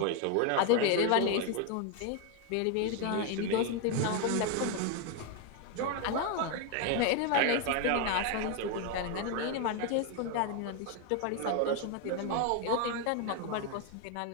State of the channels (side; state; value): both; different; correlation 0.01